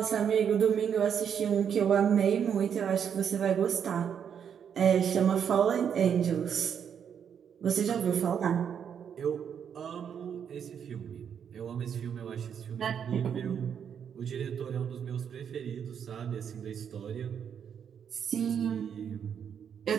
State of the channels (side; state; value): left; quieter; 7.9 dB